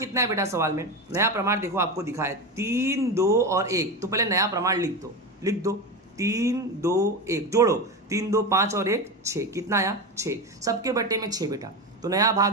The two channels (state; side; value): normal; both; correlation 0.20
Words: है बेटा सवाल में, नया प्रमाण देखो आपको दिखा है 3, 2 और 1। तो पहले नया प्रमाण लिख दो 3, 2, 1, जोड़ो 3, 2, 5 और 1 6, कितना आया 6, सबके बटे में 6 बेटा। तो नया भाग